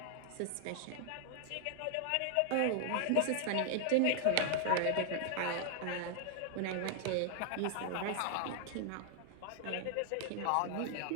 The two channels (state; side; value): different; both; correlation 0.00